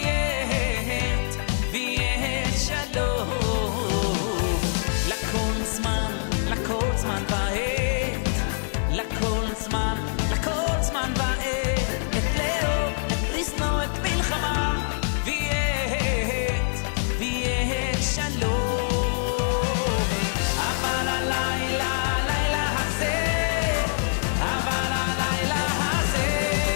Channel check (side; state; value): right; silent; digital silence